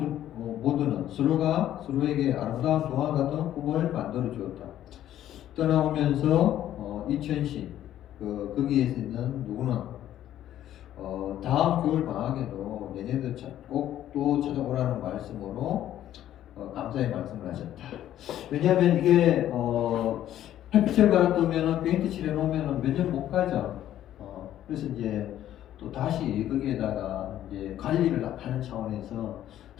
서로가 서로에게 아름다운 동화 같은 꿈을 만들어 주었다. 떠나오면서 이천시 거기에서 있는 누구는 다음 겨울 방학에도 내년도 꼭 또 찾아오라는 말씀으로 감사의 말씀을 하셨다. 왜냐하면 이게 햇빛을 받았으면 페인트 칠해 놓으면 몇 년 못 가죠. 그래서 이제 또 다시 거기에다가 이제 관리를 하는 차원에서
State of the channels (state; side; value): quieter; right; 12.0 dB